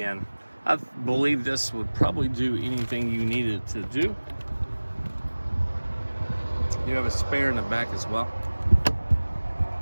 I believe this would probably do anything you needed to do. You have a spare in the back as well.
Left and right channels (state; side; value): inverted; both; correlation -1.00